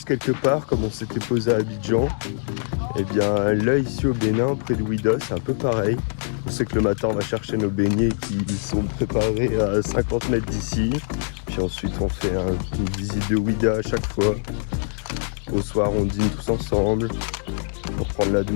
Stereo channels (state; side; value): silent; right; 63 dB below the other